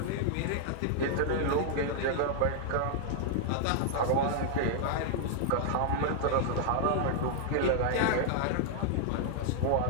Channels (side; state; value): both; different; correlation -0.01